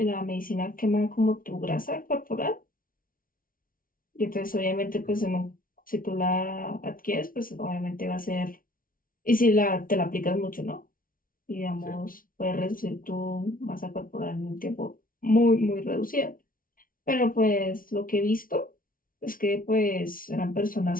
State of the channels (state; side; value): late; right; 0.41 ms